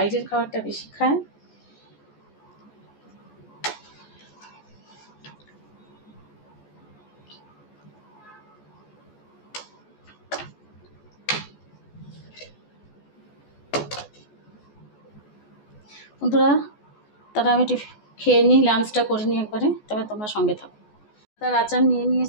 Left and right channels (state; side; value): late; right; 14 ms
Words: খাবারটা বেশি খায়। বন্ধুরা তারা আমি খেয়ে নিই, লাঞ্চটা করে নিই একবারে, তবে তোমরা সঙ্গে থাকো। তার আচার নিয়ে